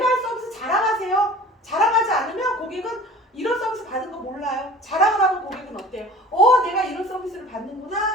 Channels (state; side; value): normal; both; correlation 0.43